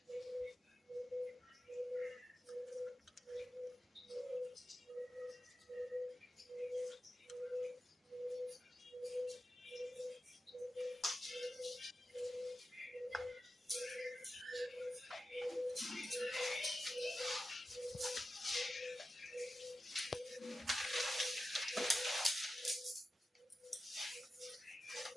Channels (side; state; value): both; normal; correlation 0.92